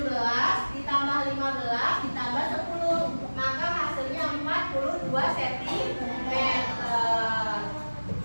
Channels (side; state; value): both; inverted; correlation -1.00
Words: ditambah 15 ditambah 10, maka hasilnya 42 cm.